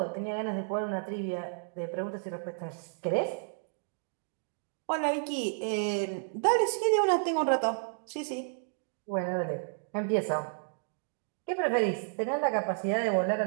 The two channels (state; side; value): silent; left; digital silence